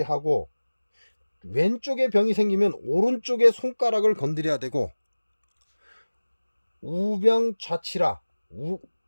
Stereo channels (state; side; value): inverted; both; correlation -1.00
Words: 왼쪽에 병이 생기면 오른쪽에 손가락을 건드려야 되고, 우병 좌치라,